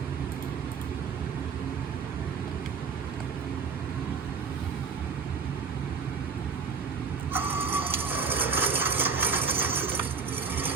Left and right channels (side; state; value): left; quieter; 5.4 dB